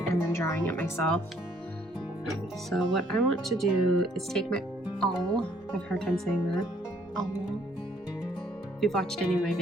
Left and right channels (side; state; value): both; normal; correlation 0.64